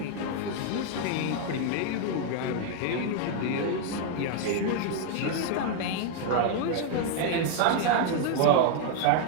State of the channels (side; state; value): both; different; correlation 0.00